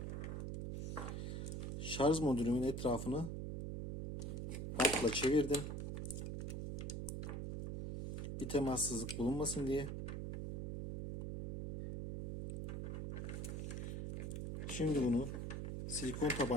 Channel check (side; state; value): right; noise; hum, 3 dB below the sound